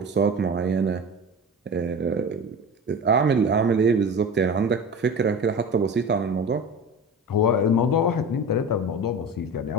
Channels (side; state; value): both; normal; correlation 0.31